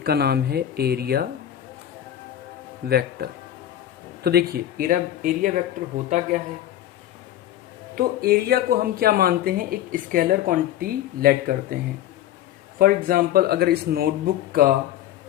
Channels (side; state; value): right; quieter; 11.9 dB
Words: का नाम है एरिया वेक्टर। तो देखिए एरिया वेक्टर होता क्या है। तो एरिया को हम क्या मानते हैं, एक स्केलर क्वांटिटी लेट करते हैं। फॉर एग्जांपल अगर इस नोटबुक का